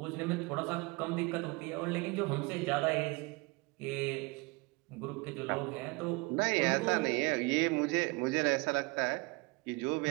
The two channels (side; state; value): left; quieter; 26.2 dB